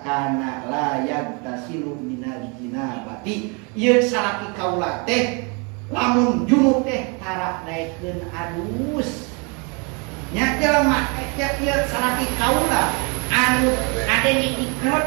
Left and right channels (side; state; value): left; quieter; 32.8 dB